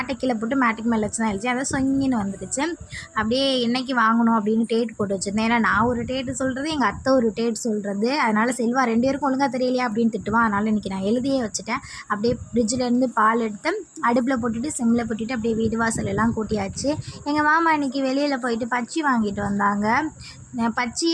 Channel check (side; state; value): both; identical; correlation 1.00